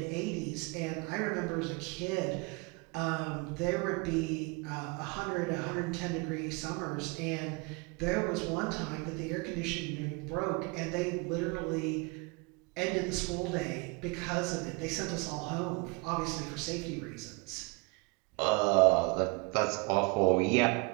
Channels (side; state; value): left; quieter; 29.1 dB